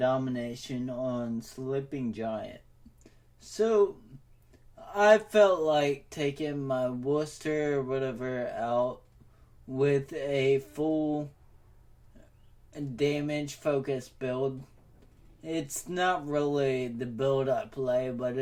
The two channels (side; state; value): both; identical; correlation 1.00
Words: on Sleeping Giant. So, I felt like taking my Worcester or whatever out with a full damage focused build. It's not really the build I play, but